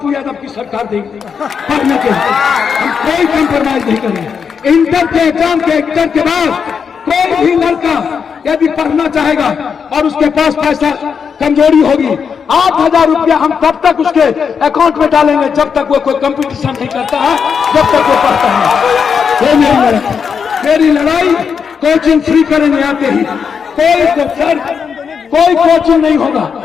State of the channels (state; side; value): quieter; right; 6.5 dB